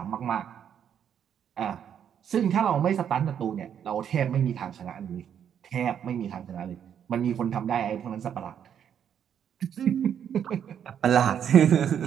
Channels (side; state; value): left; quieter; 8.8 dB